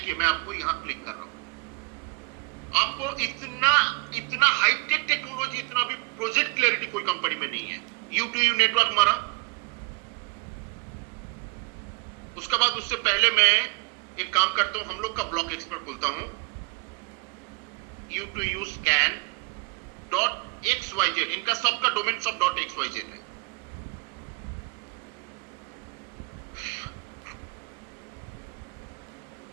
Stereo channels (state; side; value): quieter; left; 30.3 dB